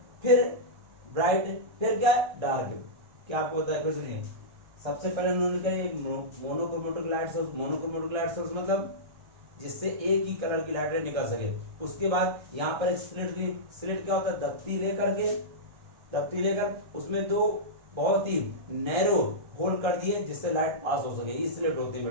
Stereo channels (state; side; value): late; left; 1.4 ms